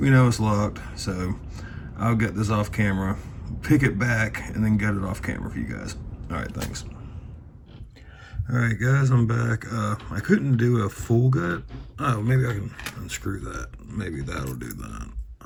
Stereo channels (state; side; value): identical; both; correlation 1.00